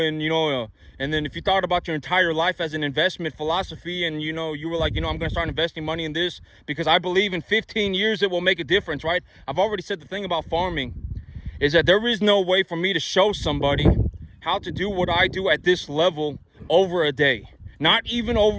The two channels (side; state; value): both; identical; correlation 1.00